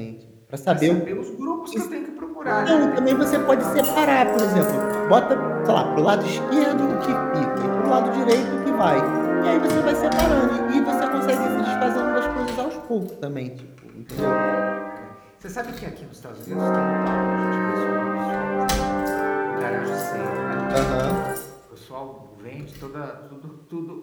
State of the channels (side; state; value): both; identical; correlation 1.00